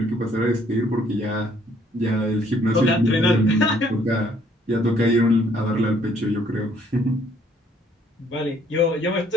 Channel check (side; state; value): both; normal; correlation 0.64